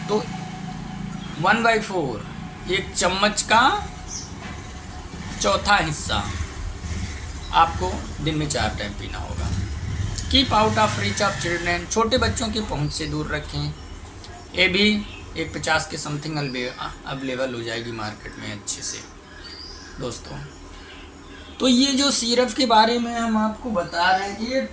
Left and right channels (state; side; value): identical; both; correlation 1.00